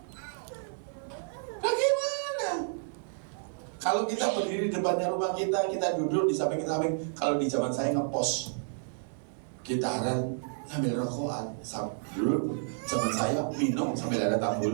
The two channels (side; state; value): left; silent; digital silence